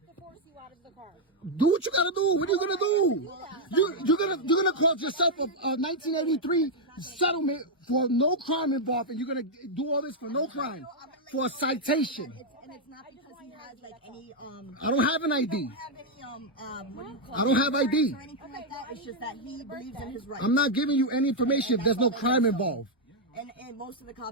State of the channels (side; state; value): both; normal; correlation -0.01